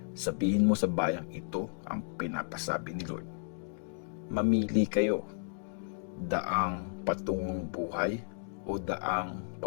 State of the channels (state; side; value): silent; right; digital silence